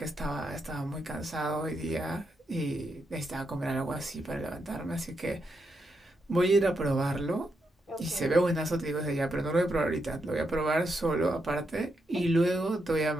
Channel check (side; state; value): both; normal; correlation 0.82